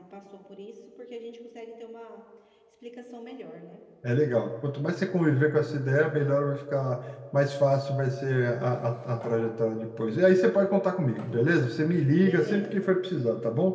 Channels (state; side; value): identical; both; correlation 1.00